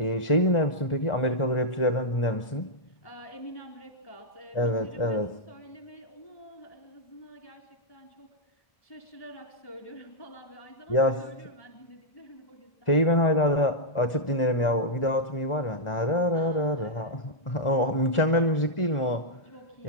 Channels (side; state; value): right; late; 1.4 ms